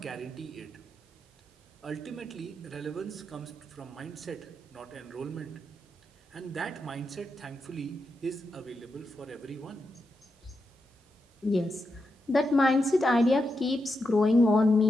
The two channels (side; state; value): both; normal; correlation 0.86